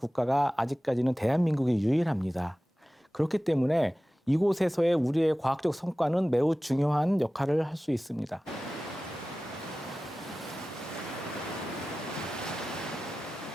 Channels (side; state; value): both; normal; correlation 0.96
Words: 아직까지는 대한민국이 유일합니다. 그렇기 때문에 이곳에서의 우리의 과학적 성과는 매우 중요한 역할을 할 수 있습니다.